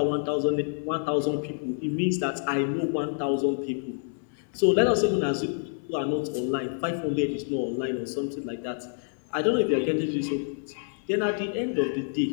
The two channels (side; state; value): right; silent; digital silence